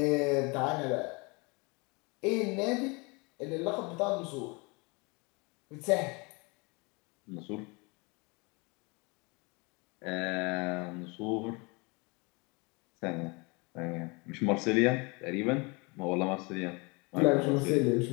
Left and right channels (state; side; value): quieter; right; 28.6 dB